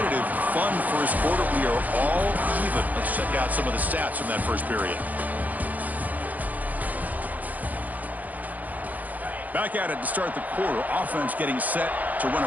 fun first quarter, we are all even. Let's check out some of the stats from that first period. Back at it to start the quarter. Offense getting set to run a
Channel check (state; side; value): late; left; 0.079 ms